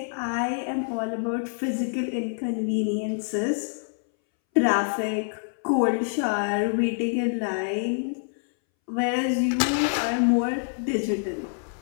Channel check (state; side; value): silent; right; 61 dB below the other